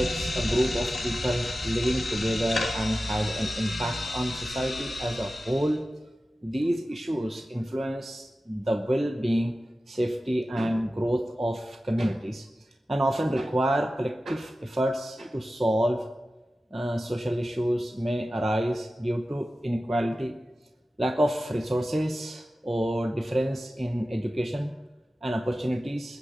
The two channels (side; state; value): both; normal; correlation 0.95